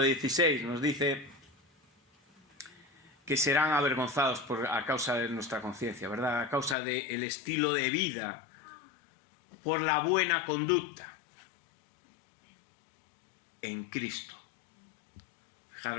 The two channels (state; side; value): drops out; right; at 6.8 s